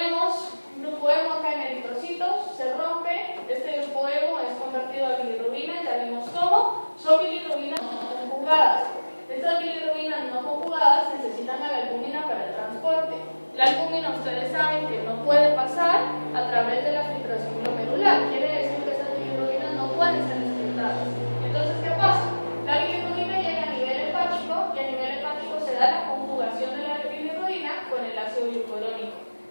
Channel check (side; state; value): both; inverted; correlation -1.00